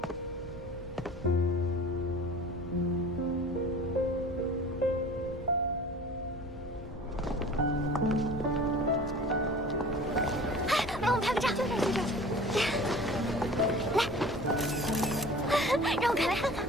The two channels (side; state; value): both; normal; correlation 0.42